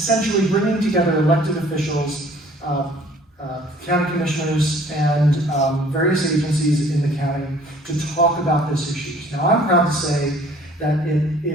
bringing together elected officials, county commissioners, and various agencies in the county to talk about this issue. Now, I'm proud to say that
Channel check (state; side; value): normal; both; correlation 0.54